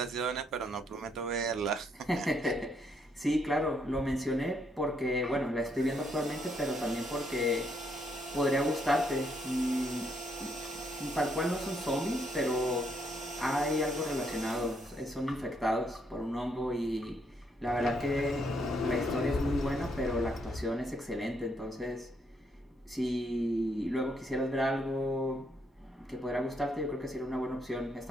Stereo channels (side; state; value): both; normal; correlation 0.74